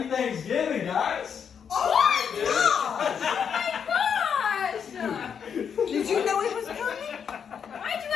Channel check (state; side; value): quieter; right; 7.3 dB